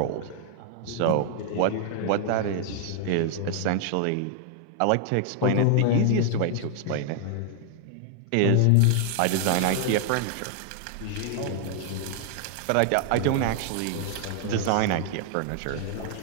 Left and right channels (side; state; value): both; different; correlation 0.00